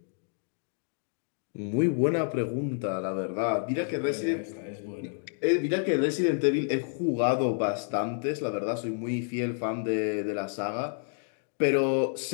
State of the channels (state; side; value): silent; right; 58 dB below the other